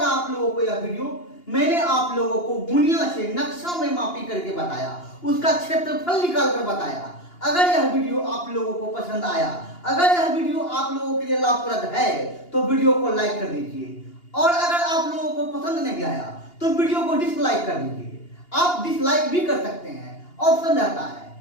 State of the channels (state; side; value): late; right; 2.8 ms